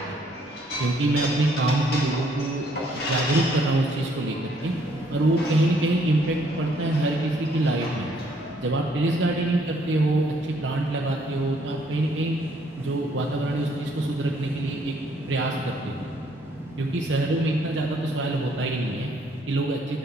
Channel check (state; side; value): normal; both; correlation 0.66